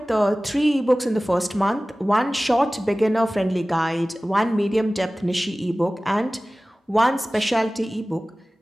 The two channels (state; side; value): normal; both; correlation 0.97